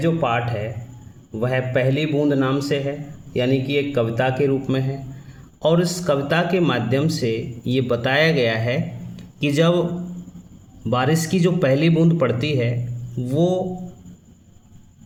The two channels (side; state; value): both; identical; correlation 1.00